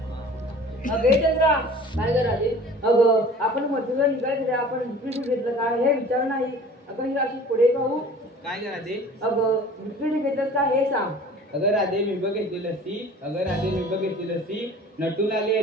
चंद्रा काय करा दे? अगं आपण मथुरेला निघायचं आपण विक्री घेतलं का हे विचार नाही. अगं ही अशी पुढे पाहू. काय करा दे? अगं विक्री घेतलं का हे सांग. अगर राधे मी बघितली लस्सी, अगर राधे मी बघितली लस्सी, नटून आली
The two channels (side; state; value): both; normal; correlation 0.45